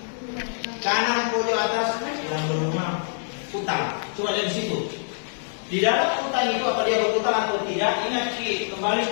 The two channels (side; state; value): right; silent; 62 dB below the other